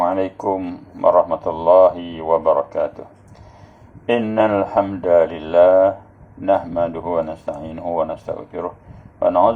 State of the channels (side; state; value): both; identical; correlation 1.00